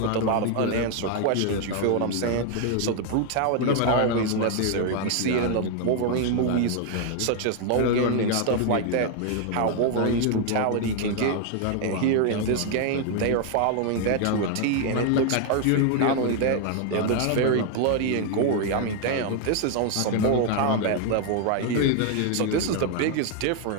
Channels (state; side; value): different; both; correlation 0.00